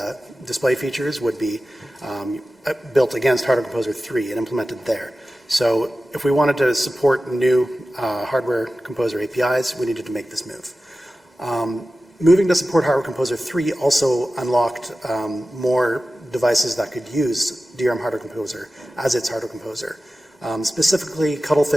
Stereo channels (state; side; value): normal; both; correlation 0.95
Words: display features would be built against Hardware Composer 3 and implemented there. So if we wanted to support new Hardware Composer APIs, we needed to make this move. Moving to support Hardware Composer 3 also unlocked more devices that could use DRM Hardware Composer as its Hardware Composer, specifically